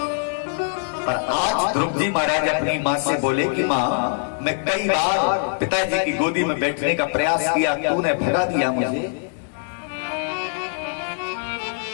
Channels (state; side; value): silent; right; digital silence